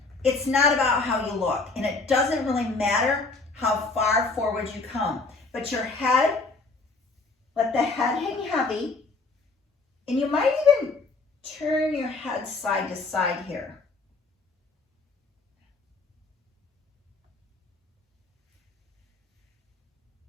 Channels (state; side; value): quieter; right; 3.8 dB